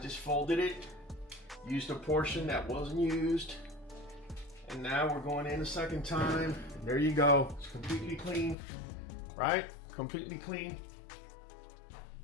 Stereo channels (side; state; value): right; drops out; at 8.6 s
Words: folded it, used a portion that wasn't used, and now we're going in a second time. There you go. It's completely clean, right? Completely clean.